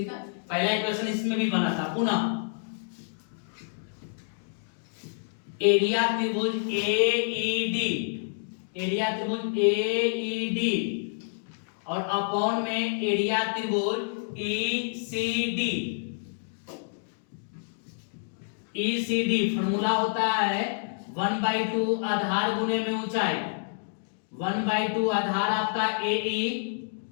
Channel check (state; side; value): silent; right; digital silence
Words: है। पहला इक्वेशन इसमें भी बना था। पुनः एरिया त्रिभुज एईडी, एरिया त्रिभुज एईडी और अपॉन में एरिया त्रिभुज ईसीडी। ईसीडी फॉर्मूला होता है 1/2 आधार गुने में ऊंचाई, 1/2 आधार आपका एई,